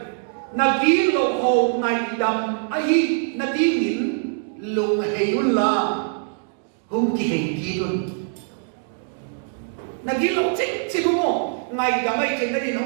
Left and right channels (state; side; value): silent; left; digital silence